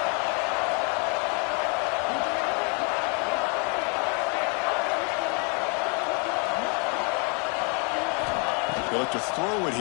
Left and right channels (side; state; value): right; quieter; 35.1 dB